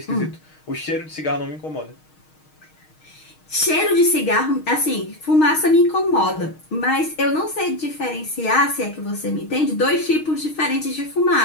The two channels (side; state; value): right; late; 6.4 ms